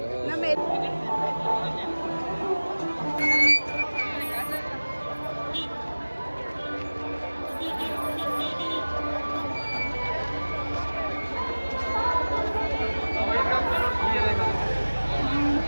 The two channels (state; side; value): inverted; both; correlation -1.00